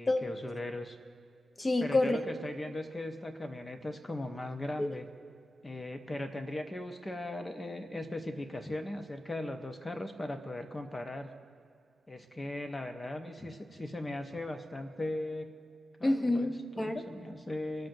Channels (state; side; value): normal; both; correlation 0.95